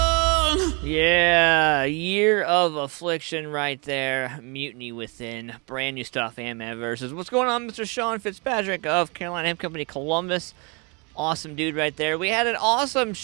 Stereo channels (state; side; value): quieter; left; 31.8 dB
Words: Yeah, Year of Affliction right there. Mutiny Within. Brand new stuff, AntmanVs. What's going on, Mr. Sean Fitzpatrick of Carolina Hemp Company, Columbus? Awesome dude right there. We had an awesome